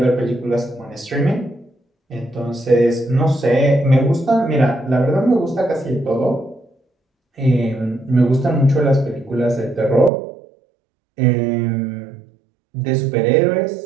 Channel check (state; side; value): drops out; left; at 10.1 s